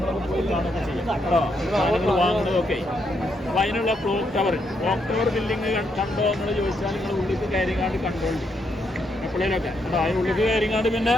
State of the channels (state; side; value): normal; both; correlation 0.78